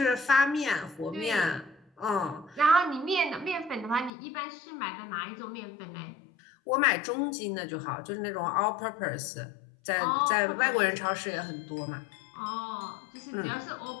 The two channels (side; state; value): right; drops out; at 4.1 s